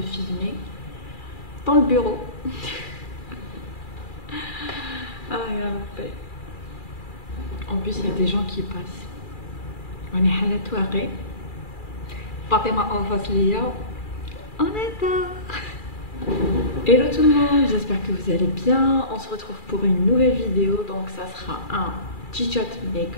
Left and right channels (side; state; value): right; late; 2.4 ms